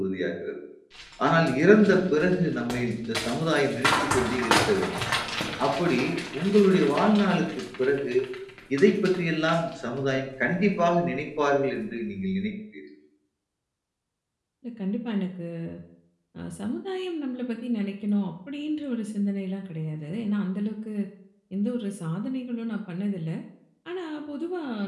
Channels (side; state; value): both; identical; correlation 1.00